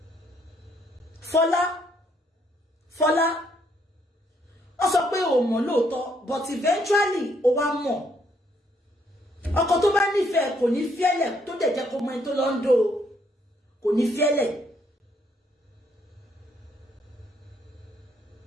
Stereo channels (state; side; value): normal; both; correlation 0.70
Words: Fọlá. Ó sọ pé ó mọ̀ lóòótọ́, but eventually ó wá mọ̀. Ọkọ tó bá nífẹ̀ẹ́ kò ní fiẹ́lẹ̀ tó dẹ̀ jẹ́ kó mọ ẹni tó lọ ń dó. Kò ní fiẹ́lẹ̀.